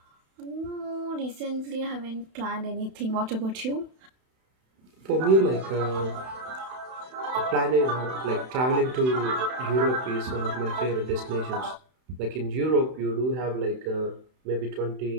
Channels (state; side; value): late; left; 31 ms